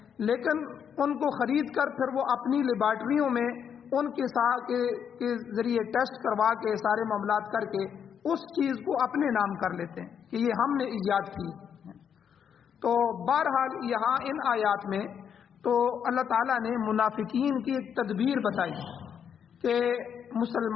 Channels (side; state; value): right; quieter; 7.9 dB